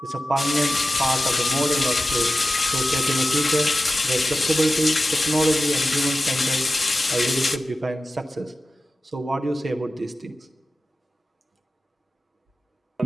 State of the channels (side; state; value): both; normal; correlation 0.94